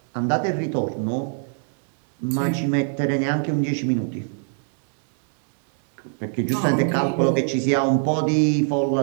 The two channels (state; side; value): silent; left; digital silence